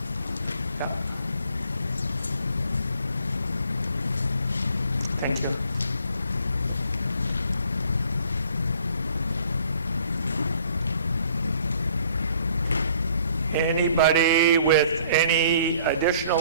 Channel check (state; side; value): inverted; both; correlation -0.58